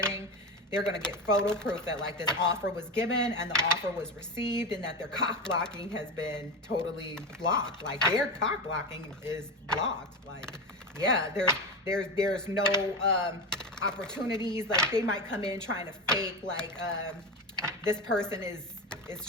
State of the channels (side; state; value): both; normal; correlation 0.19